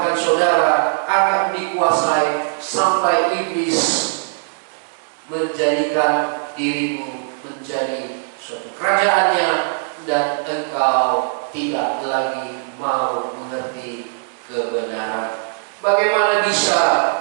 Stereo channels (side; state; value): left; silent; digital silence